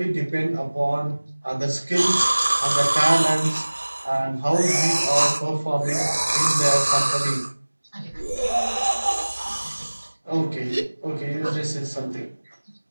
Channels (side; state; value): both; inverted; correlation -1.00